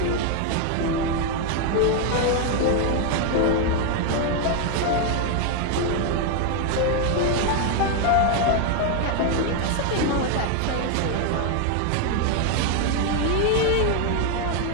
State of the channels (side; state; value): both; different; correlation 0.01